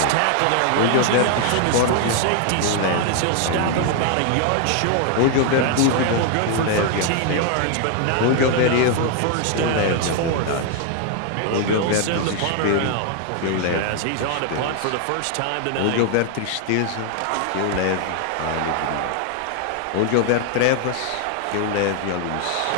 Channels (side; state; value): both; different; correlation 0.00